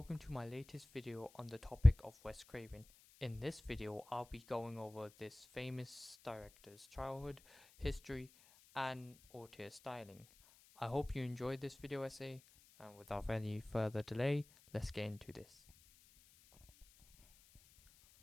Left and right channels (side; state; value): left; noise; hiss, 25 dB below the sound